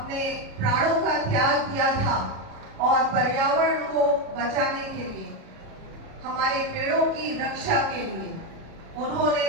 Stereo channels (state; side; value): late; left; 37 ms